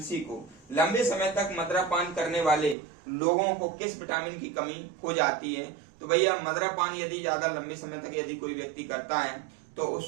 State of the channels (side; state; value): left; drops out; at 2.8 s